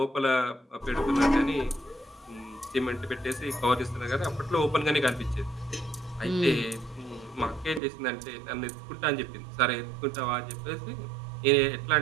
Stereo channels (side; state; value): left; drops out; at 7.8 s